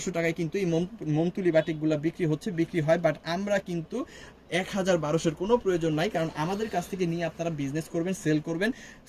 টাকায় কিন্তু এই মোমতুলি বাটিকগুলো বিক্রি হয়, বাট আমরা কিন্তু 1200-এর কোনো প্রয়োজন নাই, কারণ আমাদের কাছ থেকে নিয়ে আপনারা বিজনেস করবেন, সেল করবেন।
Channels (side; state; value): both; identical; correlation 1.00